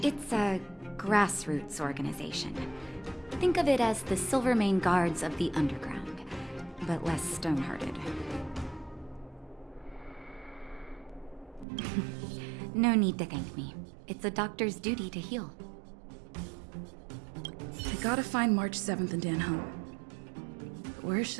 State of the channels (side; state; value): left; drops out; at 11.7 s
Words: It's a grassroots organization. Think of it as the Silvermane Guards of the Underground, but less stone-hearted. No need to thank me. It's a doctor's duty to heal. I gotta find March 7th and Dan home. Where